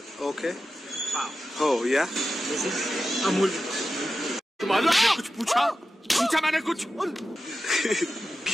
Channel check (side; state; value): both; normal; correlation 0.92